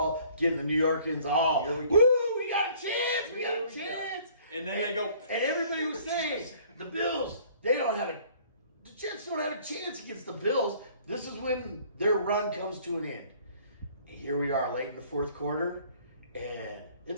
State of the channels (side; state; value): both; inverted; correlation -0.56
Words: getting the New Yorkers all. Here we go. Woo, we got a chance! We got a Here we go. chance! And then they go. And everybody was saying, the Bills, the Jets don't have a chance against the Bills. This is when their run comes to an end. And here we are late in the fourth quarter, and